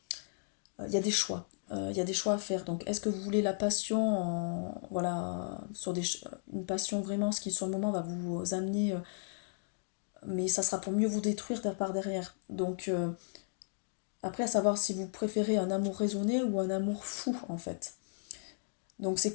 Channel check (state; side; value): silent; right; digital silence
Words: Il y a des choix. Il y a des choix à faire. Donc est-ce que vous voulez la passion voilà, sur une passion vraiment, ce qui sur le moment va vous amener... mais ça sera pour mieux vous détruire par derrière. Donc après, à savoir si vous préférez un amour raisonné ou un amour fou en fait. Donc c'est